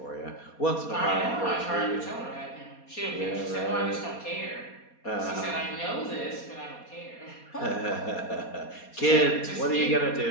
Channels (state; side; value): late; right; 4.2 ms